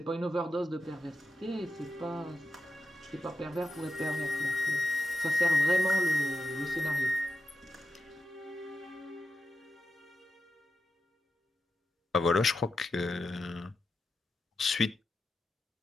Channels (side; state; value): both; normal; correlation 0.89